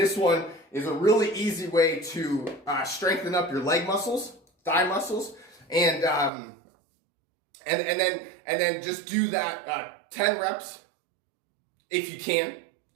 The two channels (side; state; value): left; drops out; at 6.3 s